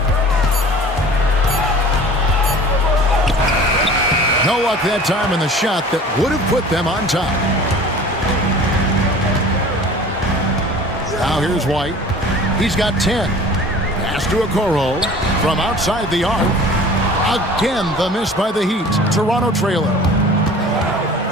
No luck that time in the shot that would have put them on top. Now here's White. He's got 10. Pass to Okoro from outside the arc. Again, the miss by the Heat. Toronto trailer.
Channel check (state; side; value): normal; both; correlation 0.44